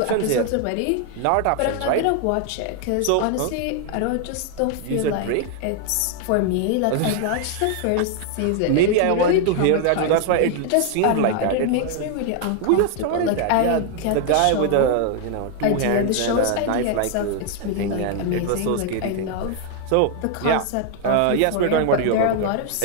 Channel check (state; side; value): different; both; correlation 0.00